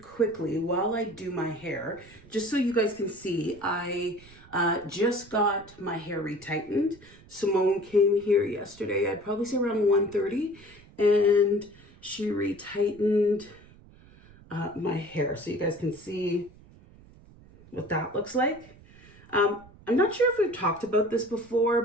while I do my hair, just so you guys can see, I just got my hair retightened. Simone came here yesterday, I'd probably say around 1:30, and she retightened my hair so you guys can see what that looks like. I'm not sure if we've talked about this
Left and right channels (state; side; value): noise; right; rumble, 23 dB below the sound